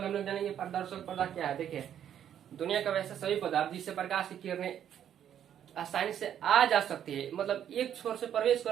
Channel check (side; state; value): left; quieter; 9.8 dB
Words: हम लोग जानेंगे पारदर्शक पदार्थ क्या है। देखिए, दुनिया का वैसे सभी पदार्थ जिससे प्रकाश की किरणें आसानी से आ जा सकती है, मतलब एक छोर से प्रवेश